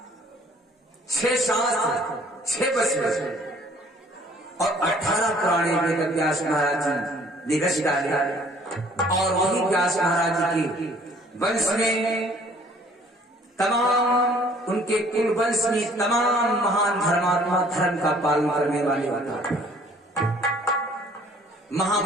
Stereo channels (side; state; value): both; normal; correlation 0.57